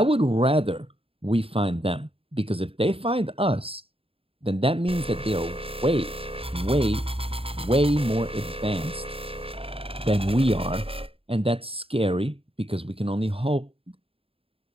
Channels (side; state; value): left; late; 0.27 ms